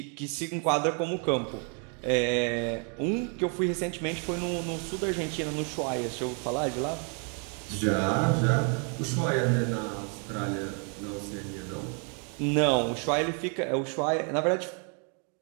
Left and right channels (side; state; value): left; quieter; 39.6 dB